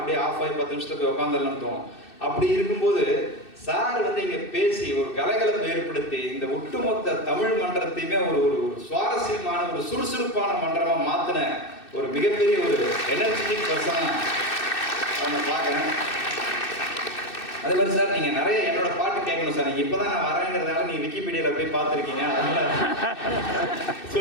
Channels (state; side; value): late; right; 2.6 ms